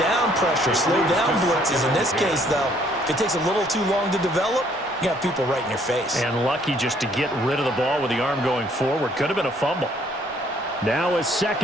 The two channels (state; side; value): normal; both; correlation 0.64